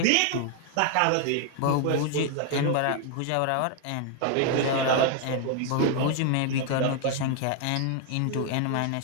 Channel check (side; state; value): both; different; correlation 0.00